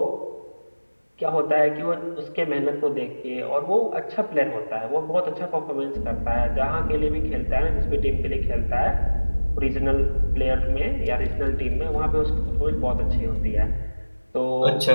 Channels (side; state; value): both; inverted; correlation -1.00